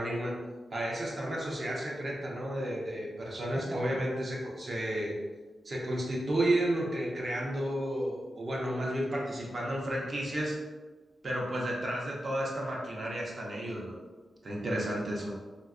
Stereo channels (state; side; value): normal; both; correlation 0.89